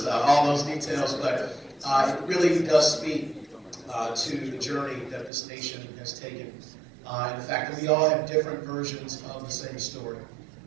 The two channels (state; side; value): drops out; left; at 5.3 s